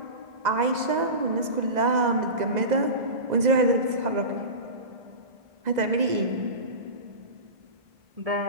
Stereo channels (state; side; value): late; left; 2.0 ms